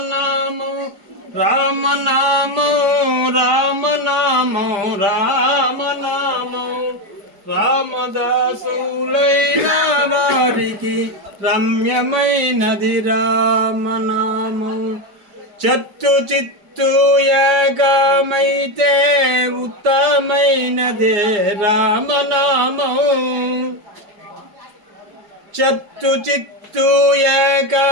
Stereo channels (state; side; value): late; left; 4.9 ms